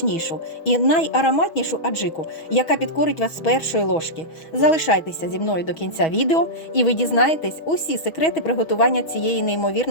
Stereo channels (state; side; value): late; right; 6.2 ms